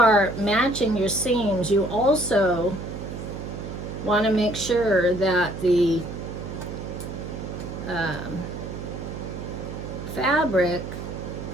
matching your seams, you also want to make sure that the fabric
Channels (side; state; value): right; noise; hum, 8 dB below the sound